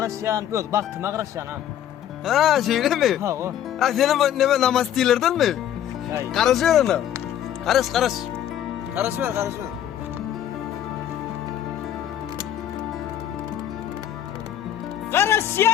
Yok baktım Karasyan ha. Ha şeyle mi? Ha o. Ha senin ne namaz değillerden mi? Hay. Karışıyor ona. Karış. Karış ver.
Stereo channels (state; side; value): quieter; right; 10.8 dB